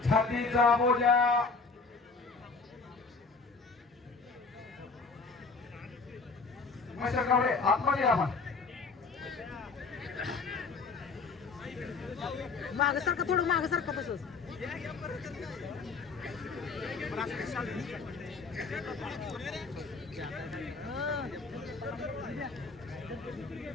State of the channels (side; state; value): right; quieter; 4.4 dB